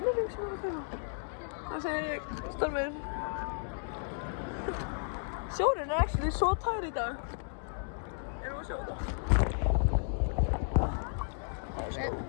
sem ég er að kaupa. Það segir ég, Stormur. Sjórinn er actually svo tær í dag. Erum við að sjá þetta?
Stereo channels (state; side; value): silent; right; digital silence